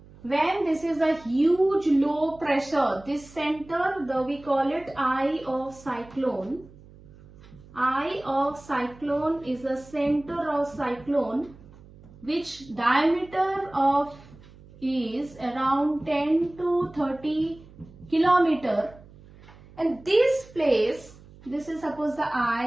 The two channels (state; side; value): noise; right; hum, 22 dB below the sound